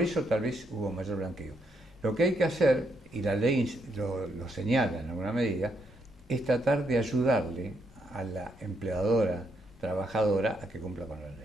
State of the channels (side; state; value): both; normal; correlation 0.76